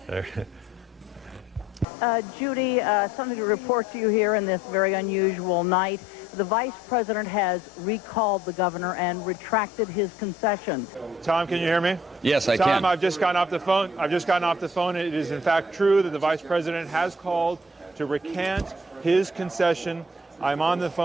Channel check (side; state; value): both; normal; correlation 0.58